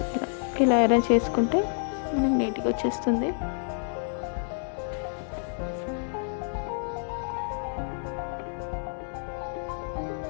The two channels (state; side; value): silent; right; 59 dB below the other